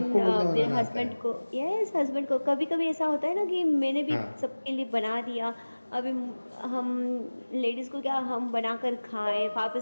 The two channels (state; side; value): inverted; both; correlation -1.00